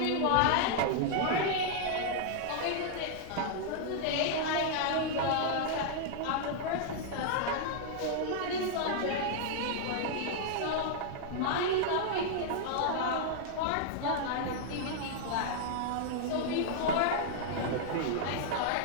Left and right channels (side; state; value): both; different; correlation -0.01